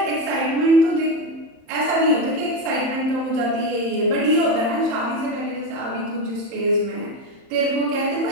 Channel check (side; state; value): left; late; 30 ms